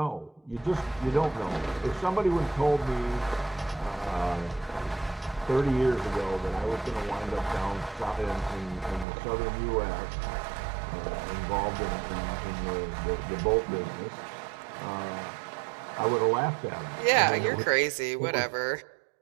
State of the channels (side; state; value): left; drops out; at 9.1 s